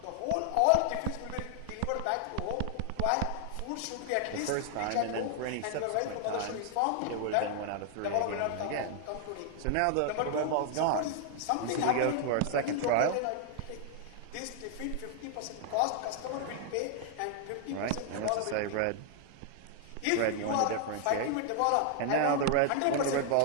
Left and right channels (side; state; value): both; different; correlation 0.00